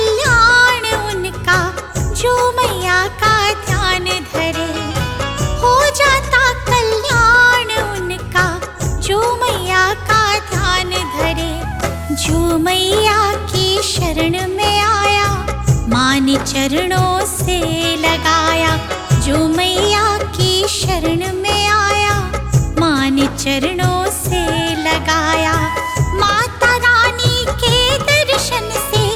उनका जो मैया का ध्यान धरे। हो जाता कल्याण उनका जो मैया का ध्यान धरे। जो मैया की शरण में आया, माँ ने चरणों से लगाया। जो मैया की शरण में आया, माँ ने चरणों से लगाया। माता रानी के दर्शन से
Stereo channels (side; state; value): both; identical; correlation 1.00